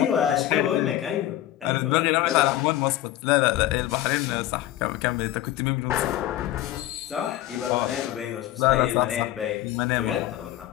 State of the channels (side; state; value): right; quieter; 13.9 dB